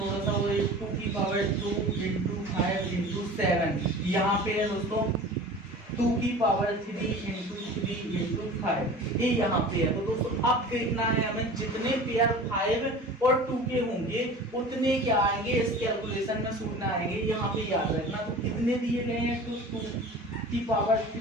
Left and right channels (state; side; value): normal; both; correlation 0.39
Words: सा, वो 2 की पावर 2 इंटू 5 इंटू 7। यहाँ पे है दोस्तों 2 की पावर 3 इंटू 3 इंटू 5, ये यहाँ पे है। तो दोस्तों अब देखना है हमें, जितने पेयर 5 और 2 के होंगे उतने क्या आएंगे इस कैलकुलेशन में शून्य आएंगे। यहाँ पे याद रखना, तो कितने दिए गए हैं, तो 2 की पावर